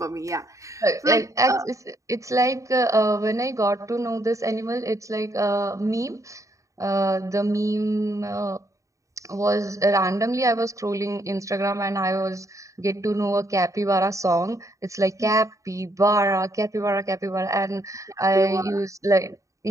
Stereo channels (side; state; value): left; late; 0.16 ms